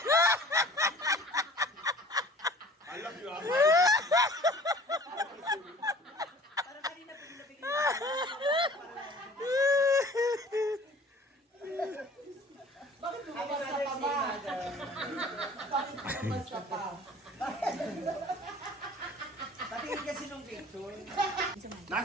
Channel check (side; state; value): both; normal; correlation 0.48